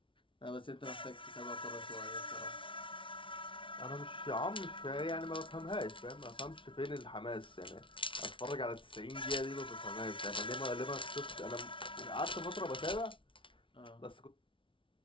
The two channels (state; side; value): late; right; 0.25 ms